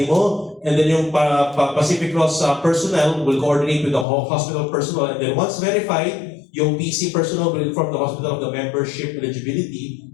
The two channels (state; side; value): drops out; right; at 4.0 s